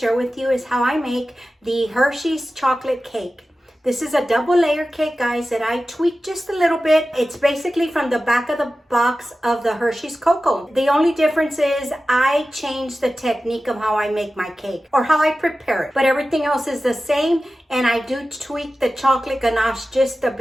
with you is how I make the Hershey's chocolate cake. This is a double layer cake, guys, that I tweaked just a little bit. It's basically from the back of the box of the Hershey's Cocoa. The only difference is I changed the technique of how I make my cake or how I prepare it. But everything else is the same, and I do tweak the chocolate ganache just a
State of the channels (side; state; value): both; normal; correlation 0.94